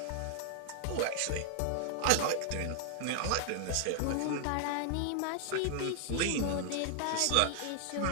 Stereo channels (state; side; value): different; both; correlation 0.00